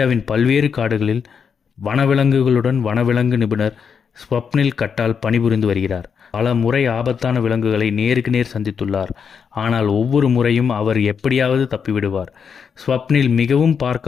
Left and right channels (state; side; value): quieter; right; 6.6 dB